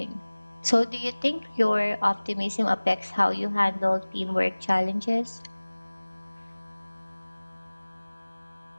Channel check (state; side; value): inverted; both; correlation -1.00